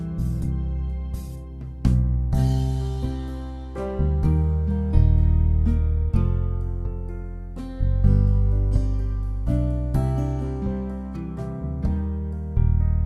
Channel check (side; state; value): both; identical; correlation 1.00